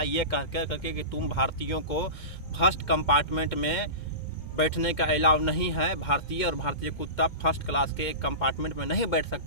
ये कह करके कि तुम भारतीयों को फर्स्ट कंपार्टमेंट में बैठने का अलाउ नहीं है। भारतीय और भारतीय कुत्ता फर्स्ट क्लास के एक कंपार्टमेंट में नहीं बैठ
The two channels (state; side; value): late; right; 2.2 ms